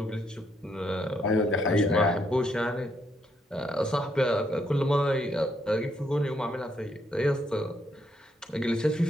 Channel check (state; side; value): normal; both; correlation 0.75